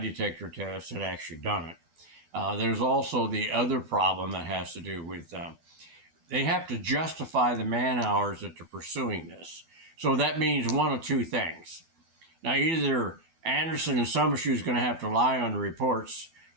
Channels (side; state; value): left; late; 12 ms